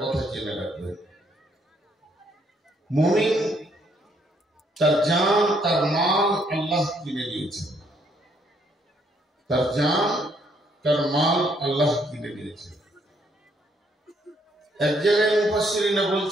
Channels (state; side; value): normal; both; correlation 0.70